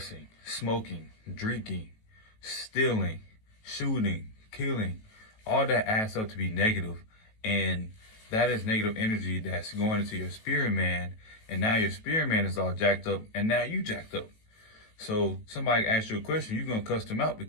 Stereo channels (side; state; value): right; late; 18 ms